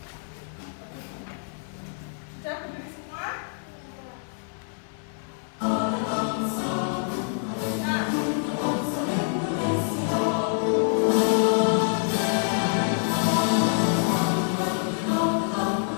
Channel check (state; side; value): silent; right; 61 dB below the other